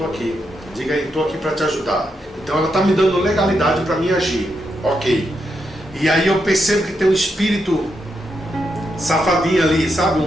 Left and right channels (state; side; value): normal; both; correlation 0.83